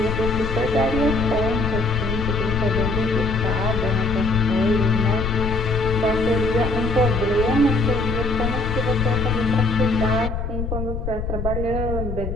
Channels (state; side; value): noise; left; rumble, 4 dB below the sound